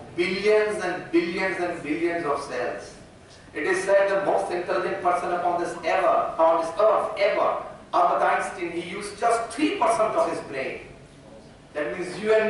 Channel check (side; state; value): both; identical; correlation 1.00